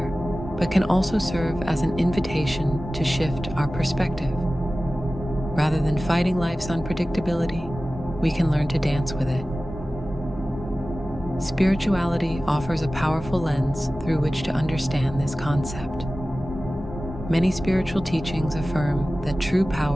but can also serve as an invitation to shift our perspective. Rather than fighting life's unpredictability, we can learn to dance with it. Spirituality offers a powerful lens through which to understand this concept. Many spiritual teachings affirm that true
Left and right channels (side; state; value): both; normal; correlation 0.96